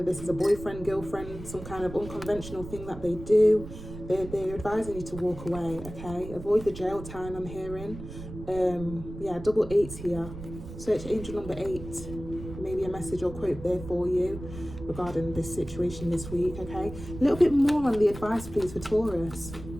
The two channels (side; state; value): right; noise; rumble, 12 dB below the sound